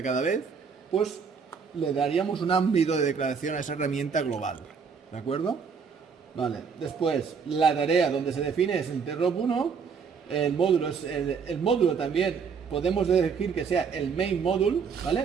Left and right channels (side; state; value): left; quieter; 6.0 dB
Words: cada vez, pues le daríamos un ámbito de declaración a esa herramienta global, ¿de acuerdo? Vale, después la tarea donde se define es interrupt 1, el módulo es el módulo también podemos elegir que sea el main module,